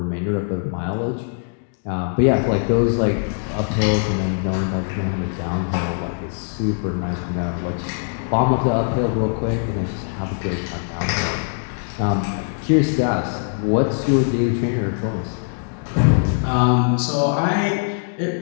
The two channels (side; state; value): right; silent; digital silence